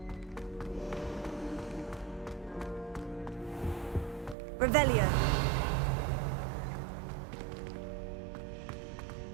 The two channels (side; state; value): left; drops out; at 4.4 s